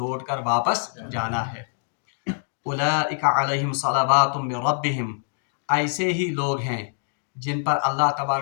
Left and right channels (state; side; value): silent; right; digital silence